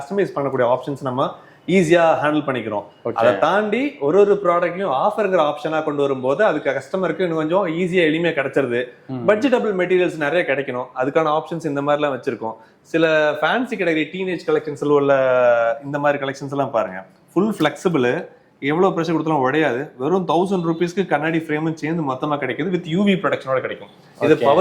பண்ணக்கூடிய ஆப்ஷன்ஸ் நம்ம ஈஸியாக ஹேண்டில் பண்ணிக்கிறோம். அதை தாண்டி ஒரு ப்ராடக்ட்லையும் ஆஃபருங்கிற ஆப்ஷனாக கொண்டு வரும்போது அதுக்கு கஸ்டமருக்கு இன்னும் கொஞ்சம் ஈஸியாக எளிமையாக கிடைச்சிருது. பட்ஜெட்டபிள் மெட்டீரியல்ஸ் நிறைய கிடைக்கணும், அதுக்கான ஆப்ஷன்ஸ் இந்த மாதிரிலாம் வச்சிருக்கோம். சில ஃபேன்சி கேட்டகரி டீனேஜ் கலெக்ஷன்ஸ் உள்ள இந்த மாதிரி கலெக்ஷன்ஸ் எல்லாம் பாருங்க, ஃபுல் ஃபிளெக்சிபிள், எவ்வளோ ப்ரெஷர் கொடுத்தாலும் உடையாது. வெறும் 1000 ரூபீஸ்க்கு கண்ணாடி ஃப்ரேமும் சேர்ந்து மொத்தமாக கிடைக்குது. வித் யூவி ப்ரொடெக்ஷனோட கிடைக்கும். இது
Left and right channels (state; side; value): identical; both; correlation 1.00